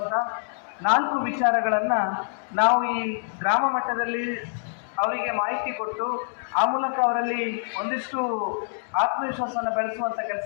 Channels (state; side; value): silent; right; digital silence